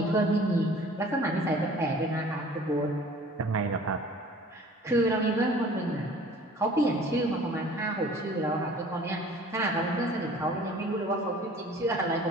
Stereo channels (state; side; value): normal; both; correlation 0.49